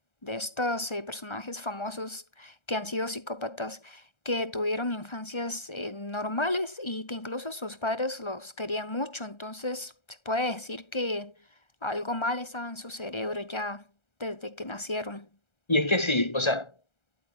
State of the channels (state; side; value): late; right; 1.3 ms